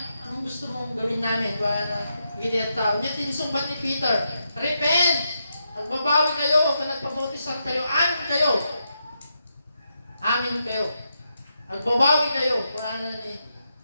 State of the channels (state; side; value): inverted; both; correlation -0.84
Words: gawin namin? Wala na, hindi ang tao niya, tinsumbat ni Peter, repent! Magbabawi kayo, kung nagpabautisan kayo, amin kayo. Magbabawi kayo, kung ano ni